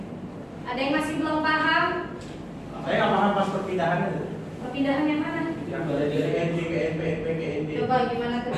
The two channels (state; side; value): identical; both; correlation 1.00